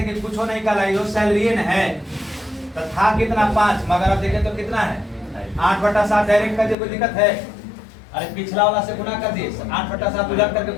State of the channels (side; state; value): right; drops out; at 6.8 s